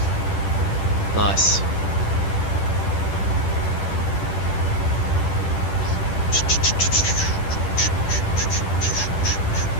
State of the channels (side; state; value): right; late; 10 ms